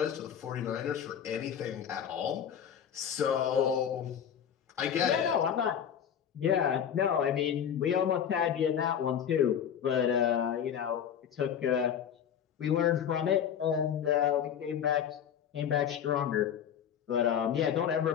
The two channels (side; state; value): right; quieter; 8.7 dB